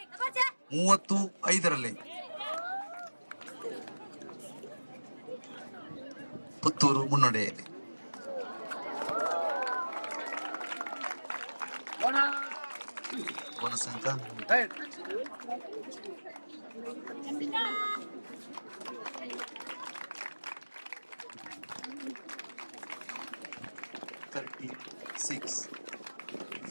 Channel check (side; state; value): both; inverted; correlation -1.00